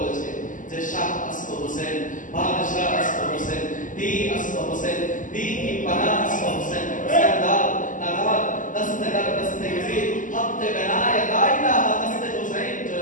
যে শাহ আসফ হোসেন, বাদশাহ আসফ হোসেন, दी আসফ হোসেন, दी की पनाह আসফ হোসেन, सरदार नवाब दस्तगर दस्ते यजीद हफ्ते बनाए ला इलाहा दस्ते हुसैन। जय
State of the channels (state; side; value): late; right; 0.38 ms